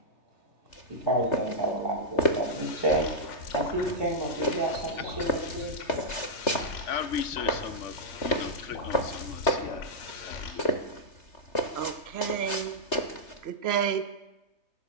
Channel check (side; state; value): right; late; 3.3 ms